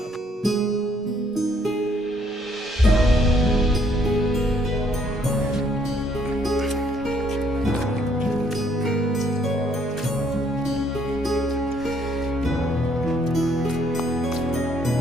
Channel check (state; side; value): normal; both; correlation 0.67